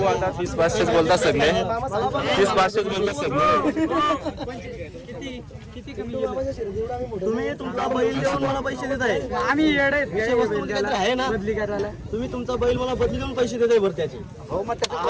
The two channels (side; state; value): both; identical; correlation 1.00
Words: आता 30,500 बोलतात सगळे, 30,500 बोलतात सगळे. तुम्ही तुमचा बैल देऊन मला पैसे देत आहे. आहे ना बदली करायला. तुम्ही तुमचा बैल मला बदली देऊन पैसे देत आहे बरं त्याचे.